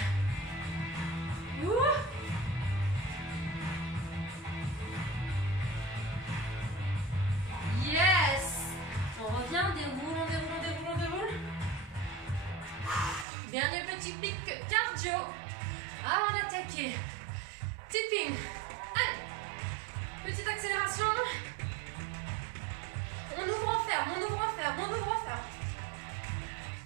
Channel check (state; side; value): drops out; left; at 13.2 s